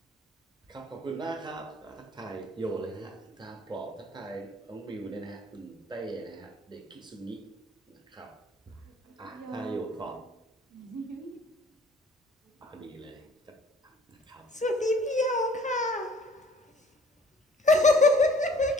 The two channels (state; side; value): normal; both; correlation 0.54